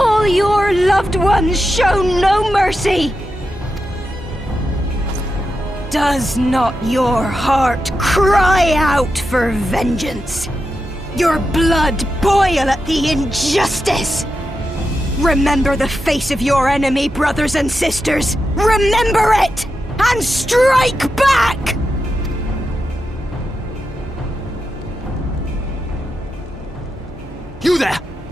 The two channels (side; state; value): both; normal; correlation 0.88